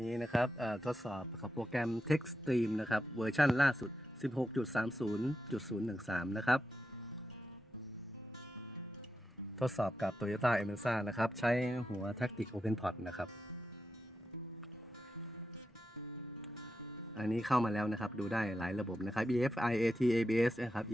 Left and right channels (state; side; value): normal; both; correlation 0.87